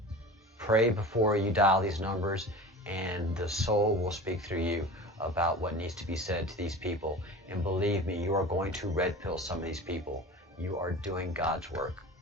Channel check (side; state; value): both; normal; correlation 0.35